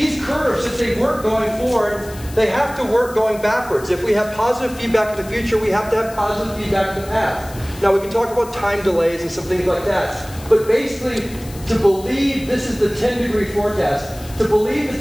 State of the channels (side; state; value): left; noise; hiss, 18 dB below the sound